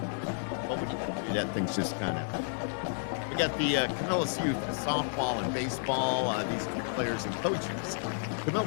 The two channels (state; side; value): silent; right; digital silence